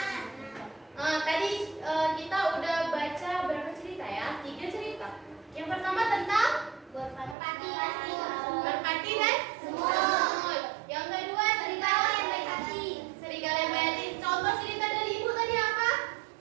Tadi kita udah baca berapa cerita ya? 3 cerita. Yang pertama tentang merpati dan semut. Yang kedua serigala yang baik hati. Serigala yang baik hati. Contoh cerita dari Ibu tadi apa?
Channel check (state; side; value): drops out; left; at 7.4 s